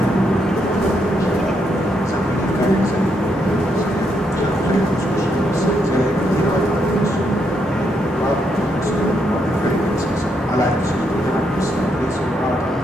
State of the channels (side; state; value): both; normal; correlation 0.78